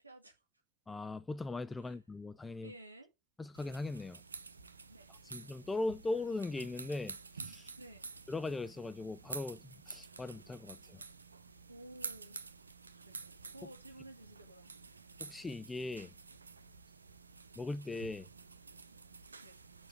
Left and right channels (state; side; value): normal; both; correlation 0.69